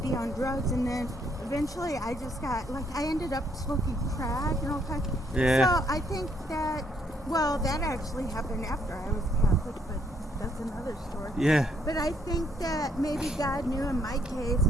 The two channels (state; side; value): normal; both; correlation 0.70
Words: on drugs. And then eventually I just got, like, I ended up smoking crack and all kinds. Yeah. So I think that, well, that actually happened after I was Catholic, but that's another story. Yeah. But I think that maybe God knew in my case,